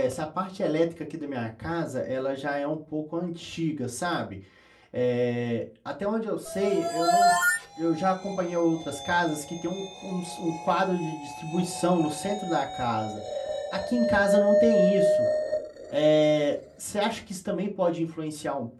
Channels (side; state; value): both; identical; correlation 1.00